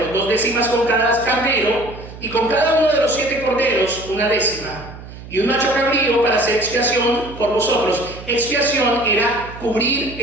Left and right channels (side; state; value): right; noise; hum, 15 dB below the sound